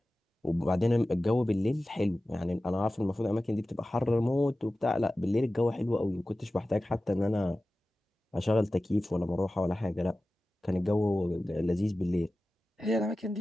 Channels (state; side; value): normal; both; correlation 0.95